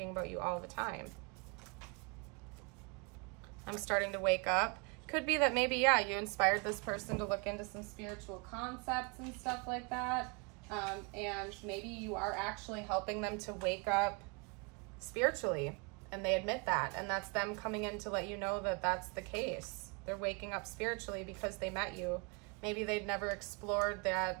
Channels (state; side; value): quieter; left; 31.4 dB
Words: about you all the time. I'm starting to wake up. Could be that maybe, yeah, you inspired this person to look into some spiritual concepts and stuff like that. And maybe you are actually helping them to wake up spiritually, and they admit that, and that's them coming in to let you know that that's the case. They're waking up spiritually because they met you. Maybe they'd never explored